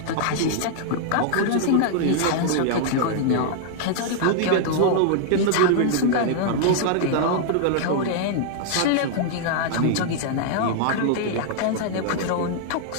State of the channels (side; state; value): both; different; correlation -0.01